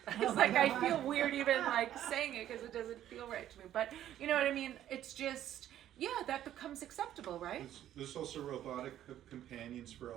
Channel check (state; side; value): quieter; left; 11.8 dB